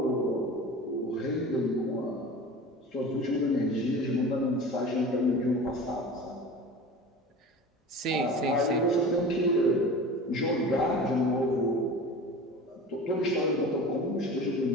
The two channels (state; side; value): normal; both; correlation 0.36